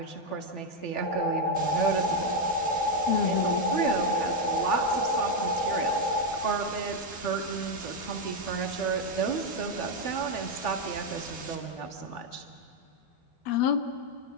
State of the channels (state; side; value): late; right; 12 ms